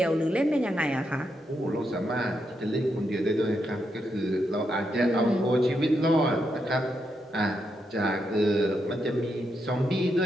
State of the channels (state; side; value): normal; both; correlation 0.82